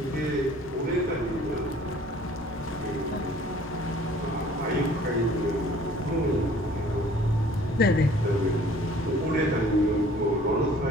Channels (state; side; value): normal; both; correlation 0.53